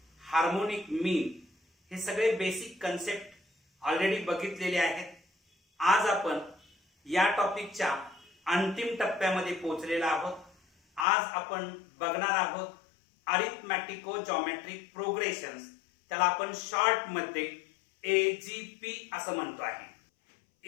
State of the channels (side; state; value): right; drops out; at 11.1 s